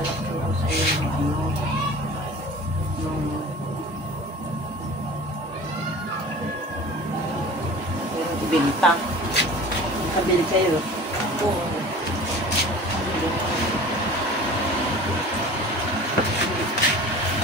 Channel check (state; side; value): normal; both; correlation 0.41